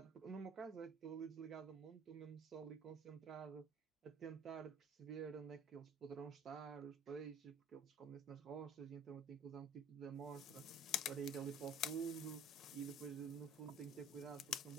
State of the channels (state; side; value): normal; both; correlation 0.50